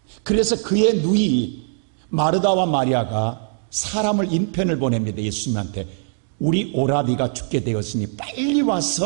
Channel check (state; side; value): silent; left; digital silence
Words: 그래서 그의 누이 마르다와 마리아가 사람을 인편을 보냅니다. 예수님한테. 우리 오라비가 죽게 되었으니 빨리